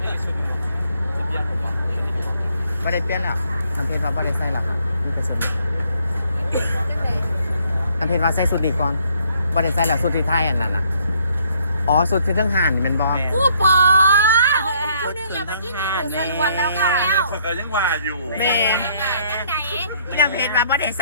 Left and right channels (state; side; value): inverted; both; correlation -0.66